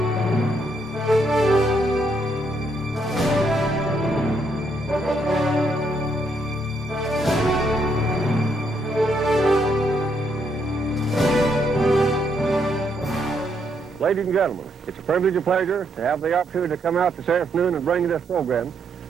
and gentlemen, it's a privilege and pleasure to have the opportunity to come out this afternoon and bring you this program.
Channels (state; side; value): normal; both; correlation 0.75